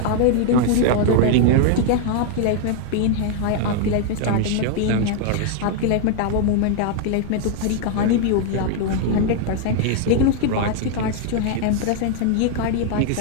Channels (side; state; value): both; different; correlation 0.00